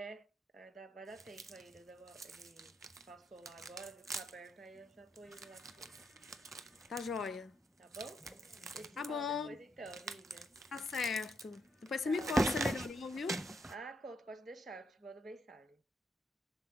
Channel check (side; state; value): both; normal; correlation 0.78